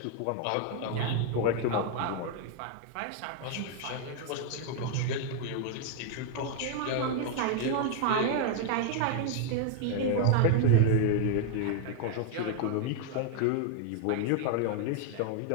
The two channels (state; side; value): different; both; correlation 0.00